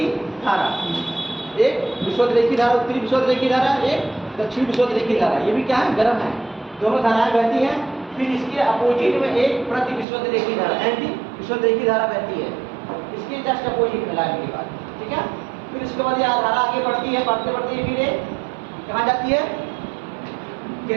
धारा। एक विषुवत रेखी धारा, उत्तरी विषुवत रेखी धारा, एक दक्षिण विषुवत रेखी धारा। ये भी क्या है? गर्म है, दोनों धाराएं बहती हैं। फिर इसके अपोजिट में एक प्रति विषुवत रेखी धारा, एंटी विषुवत रेखी धारा बहती है, इसके जस्ट अपोजिट में लाने के बाद। ठीक है, फिर इसके बाद ये धारा आगे बढ़ती है, बढ़ते बढ़ते फिर ये कहाँ जाती है?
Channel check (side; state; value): left; drops out; at 10.1 s